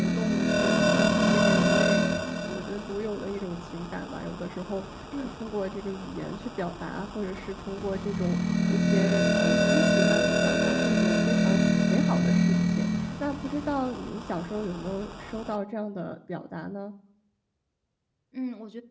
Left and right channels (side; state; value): both; identical; correlation 1.00